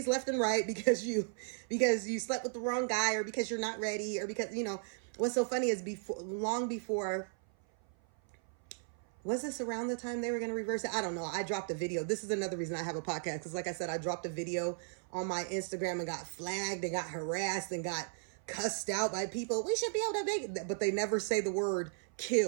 left and right because you slept with the wrong guy, or because you're not ready, or because, you know, what's so funny is long before, was this around the time they were going to reverse it? I don't know. I dropped a video. This is another reason I have a podcast, because like I said, I dropped a video on my Instagram and got flagged and got harassed and got cussed out by people. We should be able to make, but they never say the word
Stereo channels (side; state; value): left; silent; 54 dB below the other